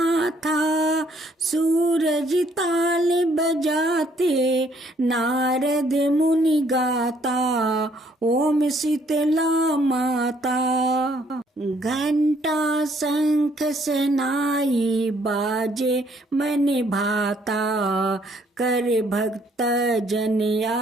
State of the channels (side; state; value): both; normal; correlation 0.66